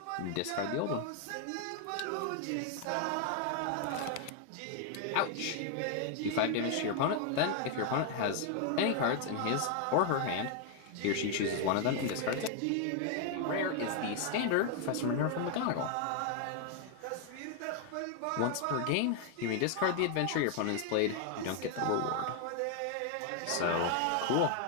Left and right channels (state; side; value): different; both; correlation 0.00